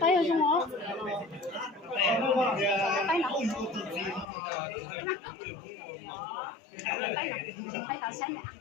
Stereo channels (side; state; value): right; drops out; at 4.2 s